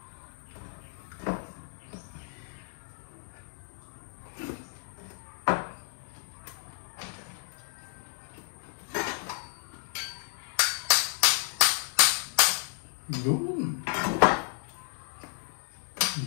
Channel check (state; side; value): silent; right; 57 dB below the other